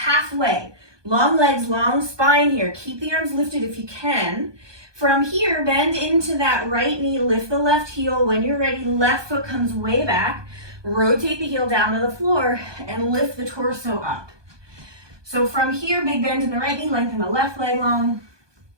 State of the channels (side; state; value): left; late; 1.2 ms